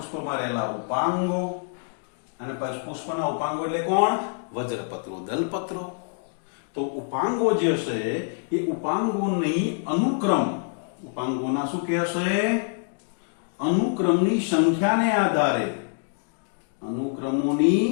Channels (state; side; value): silent; right; 61 dB below the other